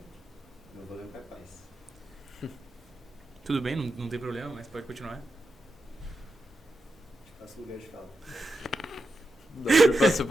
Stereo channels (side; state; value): both; normal; correlation 0.88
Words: Não vou lembrar quais. Tudo bem, não tem problema, mas pode continuar. Te passo o lugar de fala. Daí passa